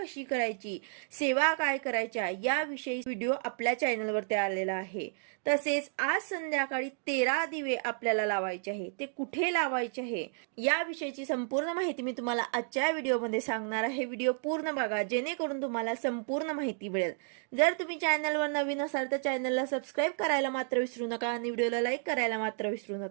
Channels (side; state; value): left; silent; 57 dB below the other